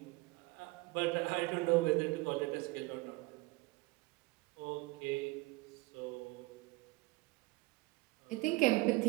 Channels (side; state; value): left; quieter; 22.9 dB